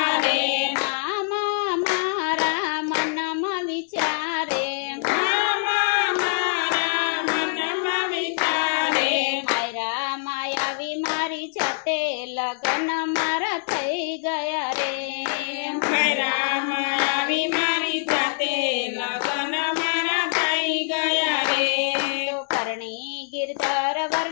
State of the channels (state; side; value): silent; right; 62 dB below the other